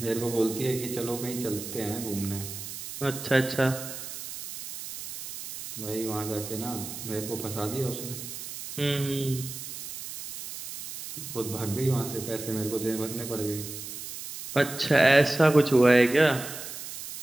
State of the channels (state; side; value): noise; right; hiss, 9 dB below the sound